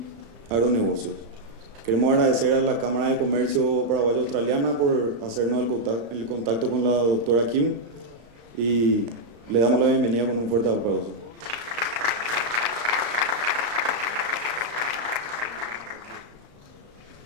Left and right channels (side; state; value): left; late; 35 ms